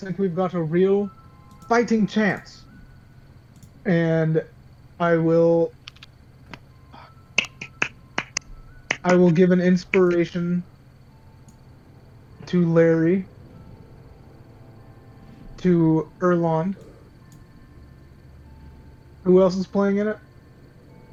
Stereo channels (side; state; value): both; identical; correlation 1.00